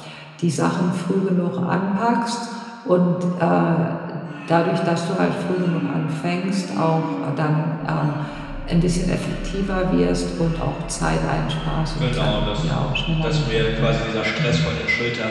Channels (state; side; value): identical; both; correlation 1.00